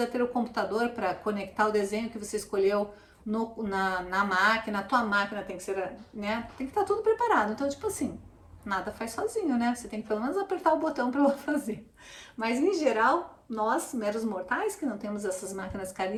ter o computador para conectar o desenho que você escolheu na máquina. A tua máquina tem que ser, né? Tem que estar tudo preparado. Então, tipo assim, nada faz sozinho, né? Você tem que pelo menos apertar o botão para ela fazer. Mas em geral, nós, meros mortais, que não temos essas máquinas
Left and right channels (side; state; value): both; identical; correlation 1.00